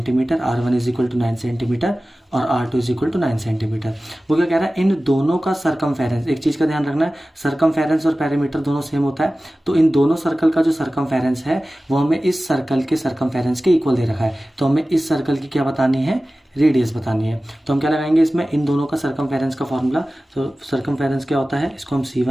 R1 is equal to 9 centimetre और R2 is equal to 9 centimetre. वो क्या कह रहा है, इन दोनों का सर्कमफेरेंस, एक चीज का ध्यान रखना है, सर्कमफेरेंस और पेरीमीटर दोनों सेम होता है। तो इन दोनों सर्कल का जो सर्कमफेरेंस है वो हमें इस सर्कल के सर्कमफेरेंस के इक्वल दे रखा है। तो हमें इस सर्कल की क्या बतानी है, रेडियस बतानी है। तो हम क्या लगाएंगे इसमें, इन दोनों का सर्कमफेरेंस का फॉर्मूला। तो सर्कमफेरेंस क्या होता है, इसको हम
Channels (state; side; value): normal; both; correlation 0.96